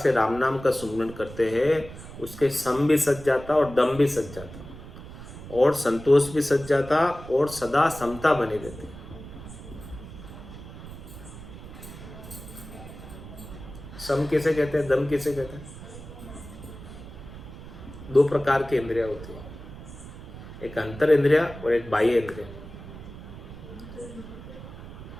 राम नाम का सुमरन करते हैं उसके सम भी सज जाता और दम भी सज जाता और संतोष भी सज जाता और सदा समता बनी रहती। सम किसे कहते हैं, दम किसे कहते हैं? दो प्रकार की इंद्रियां होती है, एक अंतर इंद्रिया और एक बाह्य इंद्रिया।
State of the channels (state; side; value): noise; right; rumble, 14 dB below the sound